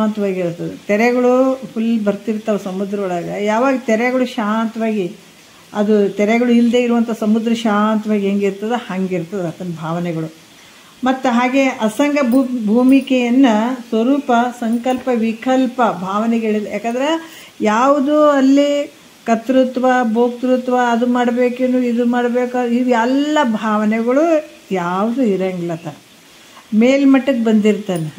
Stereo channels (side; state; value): both; identical; correlation 1.00